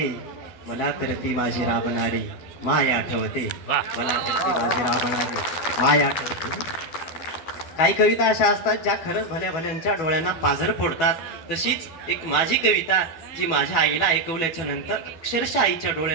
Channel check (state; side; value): late; right; 12 ms